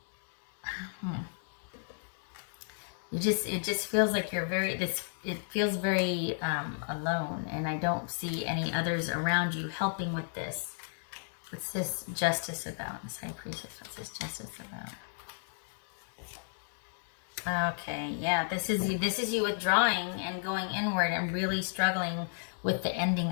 it just feels like you're it feels very alone. And I don't see any others around you helping with this. What's this justice about? This high priestess, what's this justice about? Okay, yeah, this is you withdrawing and going inward and really struggling with the ending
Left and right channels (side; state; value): right; silent; digital silence